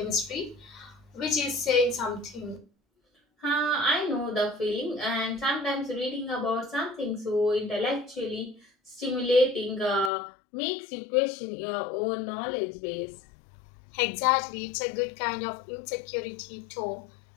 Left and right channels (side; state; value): right; drops out; at 10.1 s